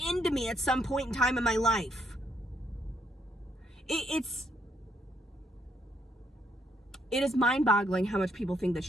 into me at some point in time in my life. It is mind-boggling how much people think that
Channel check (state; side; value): normal; both; correlation 0.73